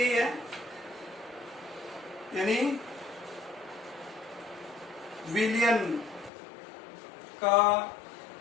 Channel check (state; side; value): drops out; right; at 6.3 s